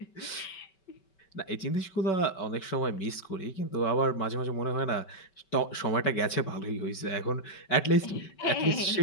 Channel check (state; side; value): late; right; 5.2 ms